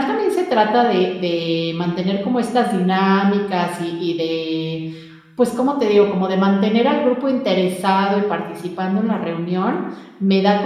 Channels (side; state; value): both; identical; correlation 1.00